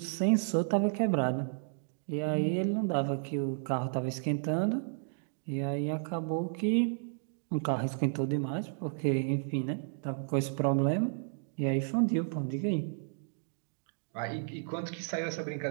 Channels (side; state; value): left; silent; digital silence